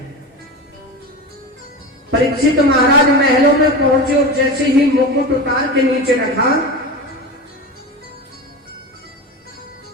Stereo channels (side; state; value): both; normal; correlation 0.26